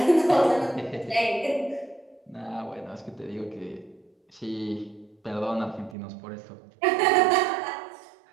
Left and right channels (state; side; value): drops out; left; at 6.0 s